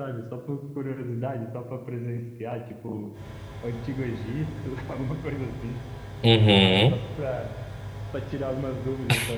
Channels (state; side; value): identical; both; correlation 1.00